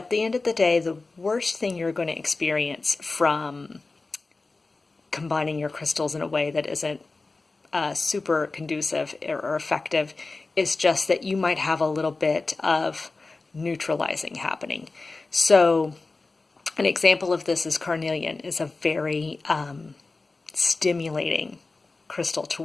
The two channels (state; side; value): quieter; right; 3.6 dB